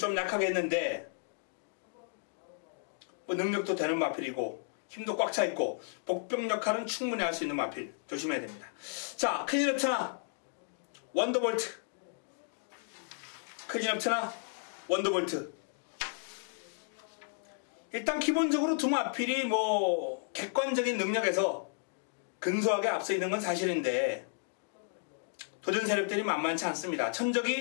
약하게 했는데 능력도 되는 마필이고 힘도 꽉 차 있고 복병 역할은 충분히 할 수 있는 마필 조심해야 됩니다. 자 클린업 천하 원더볼트 클린업 천하 원더볼트 일단 기본적으로 두 마필이 객관적인 능력에서 근소하게 앞서 있는 건 사실인데 도전 세력들이 만만치 않습니다.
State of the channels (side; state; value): right; silent; digital silence